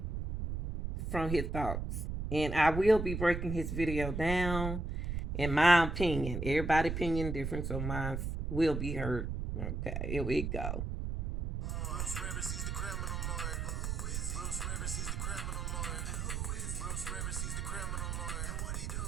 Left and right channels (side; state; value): right; noise; rumble, 2 dB below the sound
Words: From his thoughts. And I will be breaking his video down in my opinion. Everybody's opinion different, so mine will be heard. Okay, here we go. Bruce Rivers, he's the criminal lawyer. Bruce Rivers, he's the criminal lawyer. Bruce Rivers, he's the criminal lawyer. And what he do?